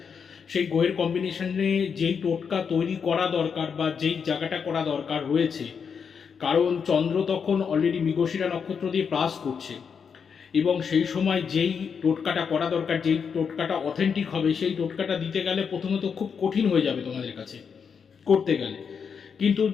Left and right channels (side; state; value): right; quieter; 6.5 dB